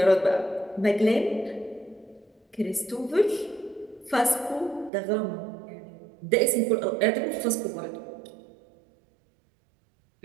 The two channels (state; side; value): drops out; left; at 4.9 s